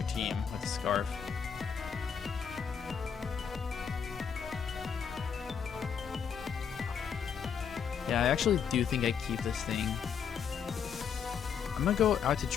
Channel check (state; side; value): quieter; right; 7.1 dB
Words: team with the Scarf. Yeah, I actually do think I keep this thing. I'm going to go out to